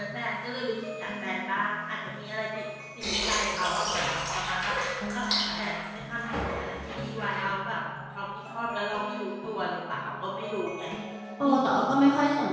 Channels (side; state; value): both; identical; correlation 1.00